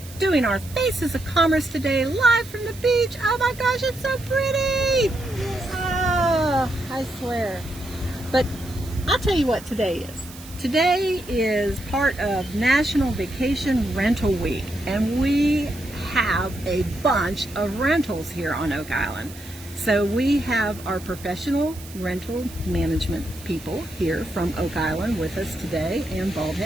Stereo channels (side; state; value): right; noise; hiss, 17 dB below the sound